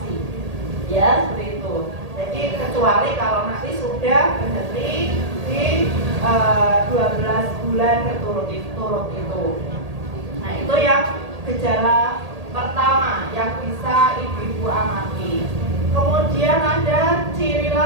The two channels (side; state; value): left; late; 1.8 ms